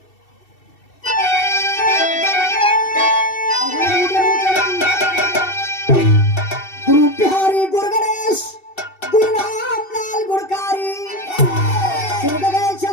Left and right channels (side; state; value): right; late; 2.7 ms